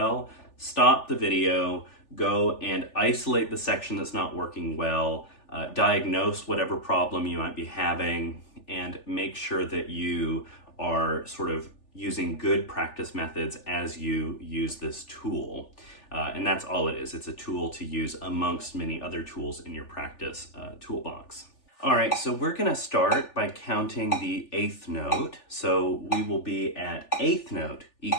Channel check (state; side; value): late; right; 3.4 ms